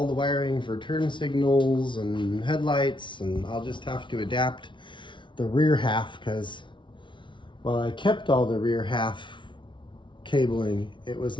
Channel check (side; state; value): right; late; 0.24 ms